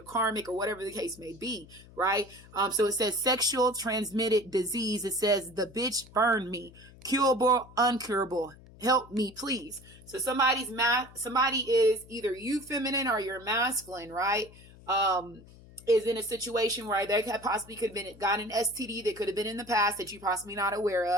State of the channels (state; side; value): noise; left; hum, 21 dB below the sound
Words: karmic, or whatever the case may be, right? So it says sexual transmitted disease. It says the bitch burned me, curable, uncurable. Help me, please. So somebody is either you feminine or you're masculine, right? Is in a situation where they possibly could have gotten an STD that could have been in the past that you're possibly not aware